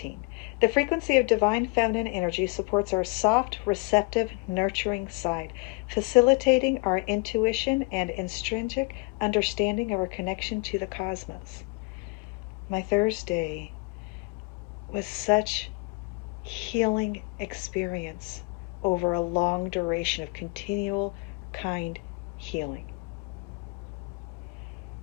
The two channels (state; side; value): quieter; right; 28.0 dB